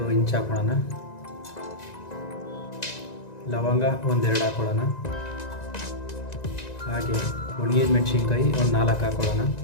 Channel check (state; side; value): late; right; 1.9 ms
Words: ಇಂಚ್ ಹಾಕೊಳ್ಳೋಣ. ಲವಂಗ ಒಂದೆರಡು ಹಾಕೊಳ್ಳೋಣ. ಹಾಗೆ ಒಣಗಿದ ಮೆಣಸಿನ್ಕಾಯಿ ಒಂದು 4 ಹಾಕೊಳ್ಳೋಣ.